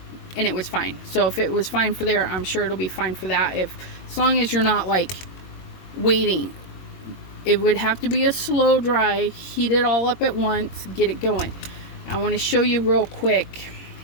and it was fine. So if it was fine for there, I'm sure it'll be fine for that. As long as you're not like waiting. It would have to be a slow dry, heat it all up at once, get it going. I want to show you real quick.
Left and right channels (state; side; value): late; right; 22 ms